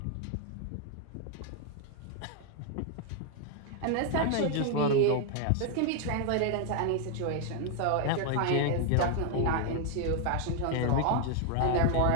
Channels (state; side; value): different; both; correlation 0.00